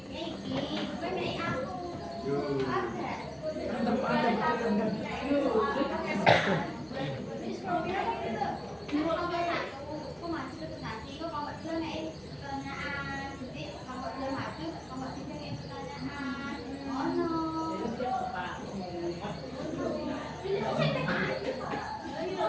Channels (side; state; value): left; noise; rumble, 29 dB below the sound